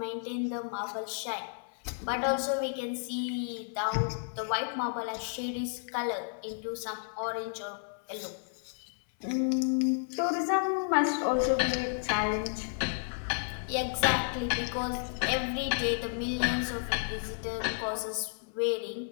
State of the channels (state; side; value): silent; right; 56 dB below the other